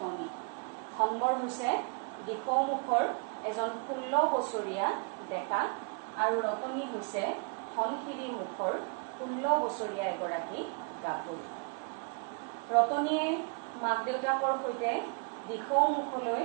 ধনবৰ হৈছে দিশমুখৰ এজন 16 বছৰীয়া ডেকা, আৰু ৰতনী হৈছে ধনশিৰি মুখৰ 16 বছৰীয়া এগৰাকী গাভৰু। ৰতনীয়ে মাক দেউতাকৰ সৈতে দিশমুখলৈ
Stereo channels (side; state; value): left; quieter; 38.1 dB